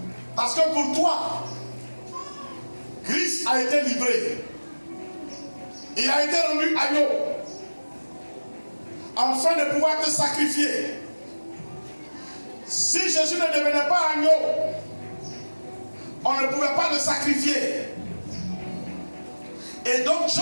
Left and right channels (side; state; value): both; inverted; correlation -1.00